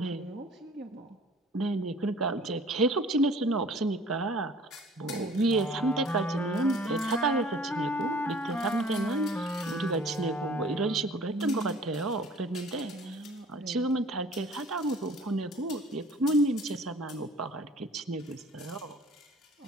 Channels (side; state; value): both; normal; correlation 0.50